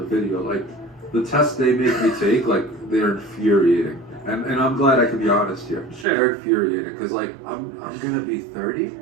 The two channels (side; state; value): left; drops out; at 6.1 s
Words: video. Like, the tests they make me take, like, they're infuriating. And I'm glad I can be honest here. Sure. They're infuriating because, like, I'm gonna be 30